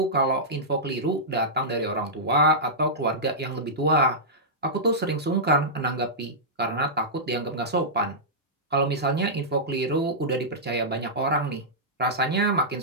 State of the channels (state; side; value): normal; both; correlation -0.13